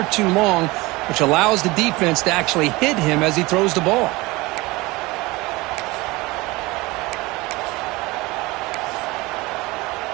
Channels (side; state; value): left; quieter; 22.1 dB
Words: too long, which allows the defense to actually hit him as he throws the ball.